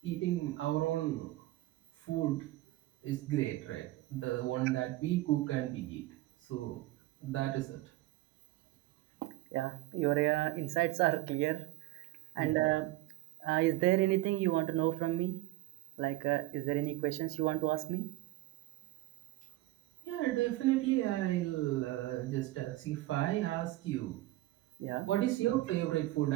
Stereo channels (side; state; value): left; quieter; 18.0 dB